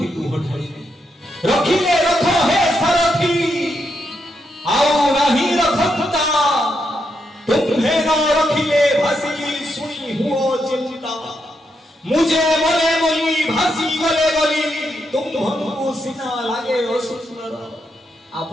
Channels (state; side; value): normal; both; correlation 0.81